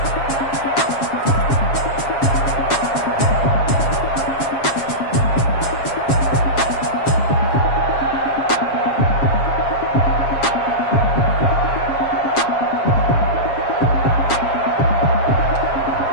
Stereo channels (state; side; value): late; right; 7.4 ms